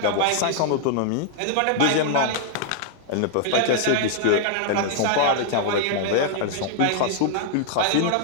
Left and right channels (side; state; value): both; different; correlation -0.01